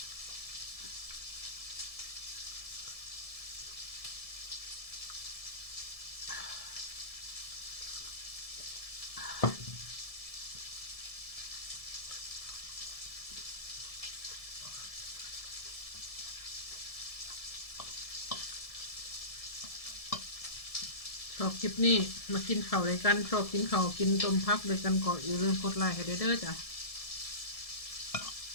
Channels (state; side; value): late; right; 1.7 ms